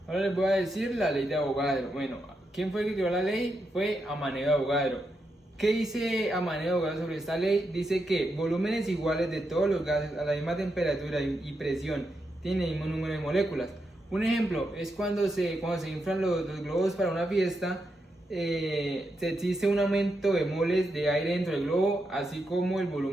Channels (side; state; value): both; normal; correlation 0.84